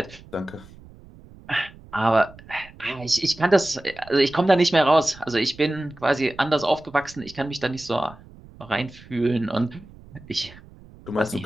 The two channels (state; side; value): noise; right; rumble, 21 dB below the sound